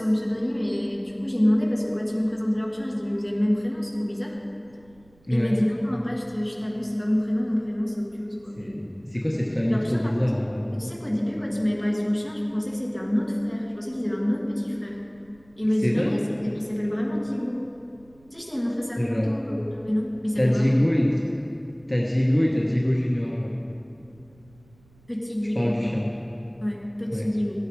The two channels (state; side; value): noise; right; rumble, 29 dB below the sound